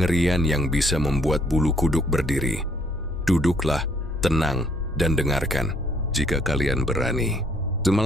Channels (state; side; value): normal; both; correlation 0.65